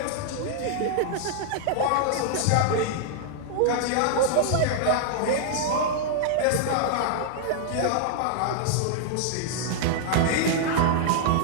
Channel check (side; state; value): both; different; correlation -0.01